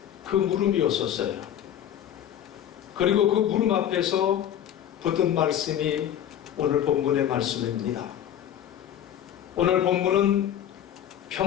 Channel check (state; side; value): quieter; right; 10.4 dB